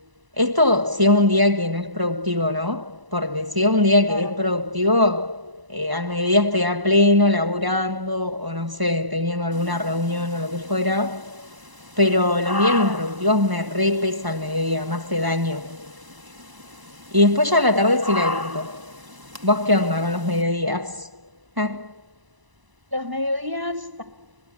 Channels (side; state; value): left; late; 1.0 ms